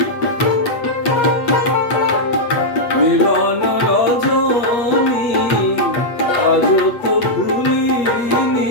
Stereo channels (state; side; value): late; right; 8.4 ms